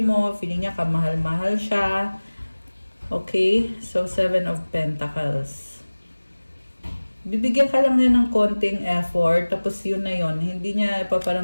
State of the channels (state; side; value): inverted; both; correlation -1.00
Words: mo. Feeling niya kamahal-mahal siya. Okay? So, Seven of Pentacles. Bibigyan ka lang niya ng konting effort. Tapos yun na yun. Hindi niya